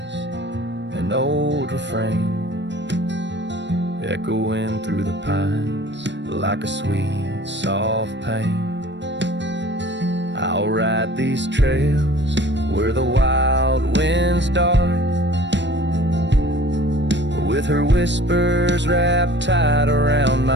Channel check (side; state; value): left; late; 0.52 ms